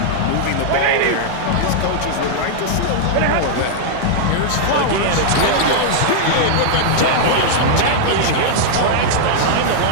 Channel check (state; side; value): different; both; correlation -0.01